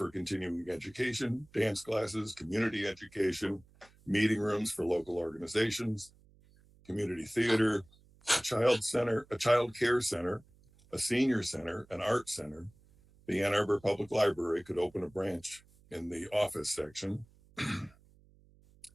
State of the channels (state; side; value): noise; right; hum, 28 dB below the sound